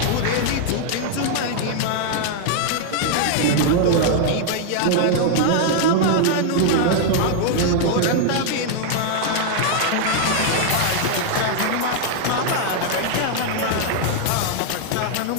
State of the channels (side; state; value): both; different; correlation 0.00